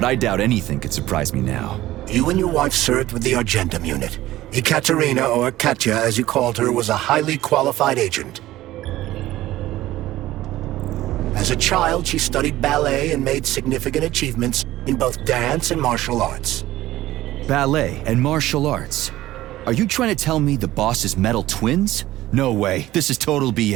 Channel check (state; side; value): quieter; left; 15.7 dB